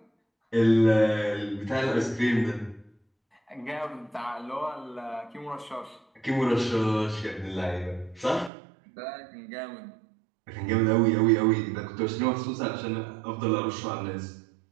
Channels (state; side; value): drops out; left; at 8.5 s